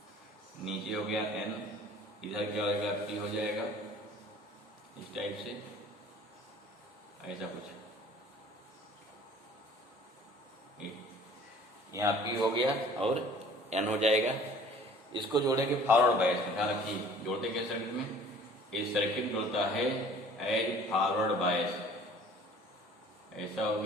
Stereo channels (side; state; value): both; normal; correlation 0.50